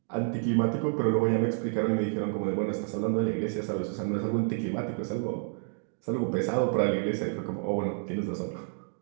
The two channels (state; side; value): silent; left; digital silence